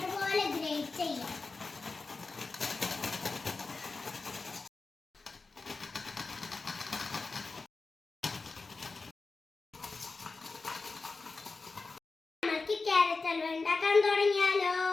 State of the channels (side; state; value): right; quieter; 4.0 dB